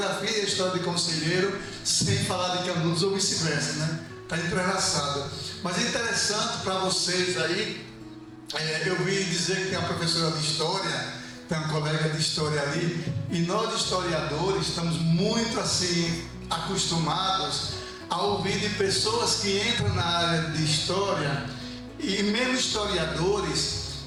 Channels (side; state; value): both; identical; correlation 1.00